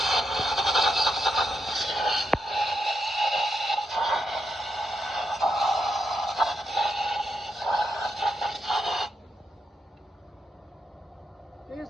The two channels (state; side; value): normal; both; correlation 0.83